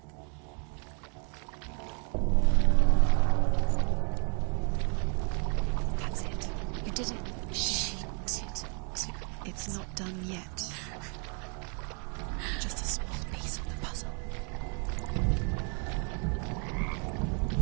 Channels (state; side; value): quieter; left; 38.2 dB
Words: That's it. You did it. She did it. It's not done yet. Just a small piece of the puzzle.